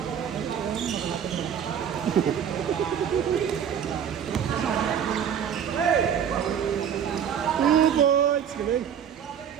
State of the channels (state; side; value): quieter; left; 8.5 dB